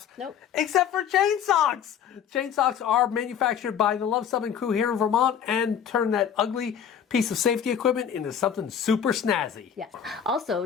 Nope. Except for chain socks. Chain socks are manufactured by the Luv Subbin crew here in Vermont and turn that ugly piece of safety equipment into something super snazzy. Yes. Also,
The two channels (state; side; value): quieter; right; 8.3 dB